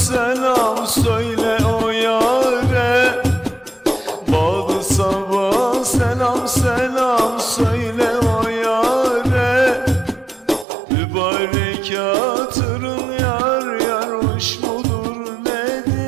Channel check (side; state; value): left; drops out; at 10.7 s